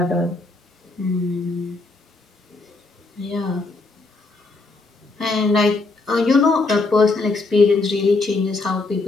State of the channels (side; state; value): right; quieter; 3.4 dB